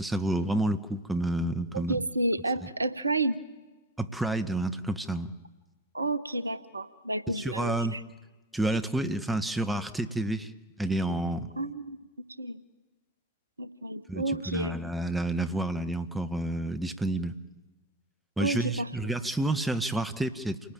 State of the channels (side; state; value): both; normal; correlation 0.32